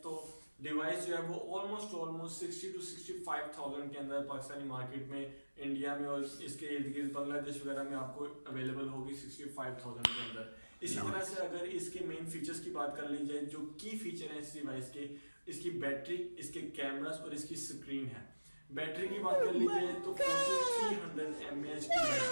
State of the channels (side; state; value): both; inverted; correlation -1.00